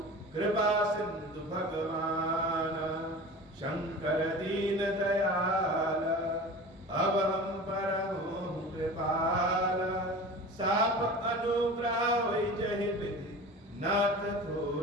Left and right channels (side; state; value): both; normal; correlation 0.36